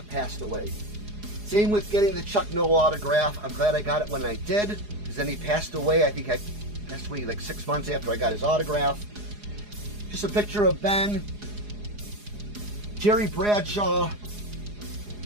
passed away. Same with getting the Chuck Noll autograph. I'm glad I got it when I did, because then he passed away. I think I passed away like 6 months after I got his autograph. Just a picture of Ben, Jerry Bradshaw,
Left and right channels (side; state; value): left; late; 4.8 ms